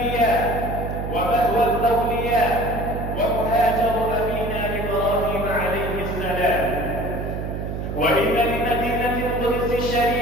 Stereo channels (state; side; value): noise; right; hum, 5 dB below the sound